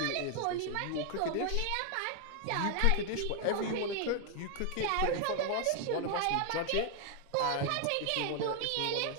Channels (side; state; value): both; different; correlation 0.00